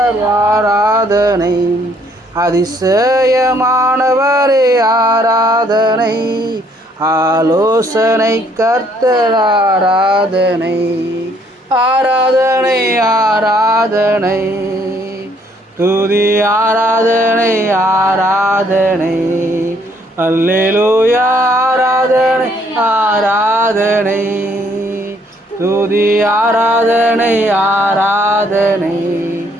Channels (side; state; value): both; normal; correlation 0.66